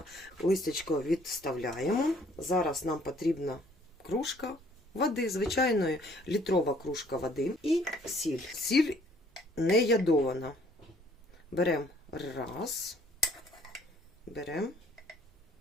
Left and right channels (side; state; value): both; normal; correlation 0.60